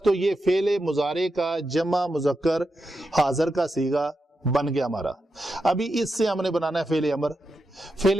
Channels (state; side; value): normal; both; correlation 0.87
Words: تو یہ فعل مضارع کا جمع مذکر حاضر کا صیغہ بن گیا ہمارا۔ ابھی اس سے ہم نے بنانا ہے فعل امر۔